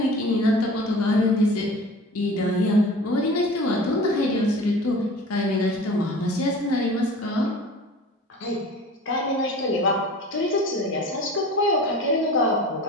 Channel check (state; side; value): normal; both; correlation 0.40